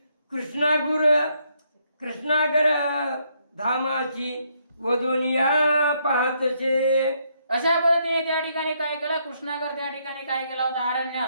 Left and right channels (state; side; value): inverted; both; correlation -0.73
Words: कृष्णागर धामाची वदोनिया पाहतसे. अशा पद्धतीने त्या ठिकाणी काय केलं कृष्णागर त्या ठिकाणी काय केला होता अरण्यात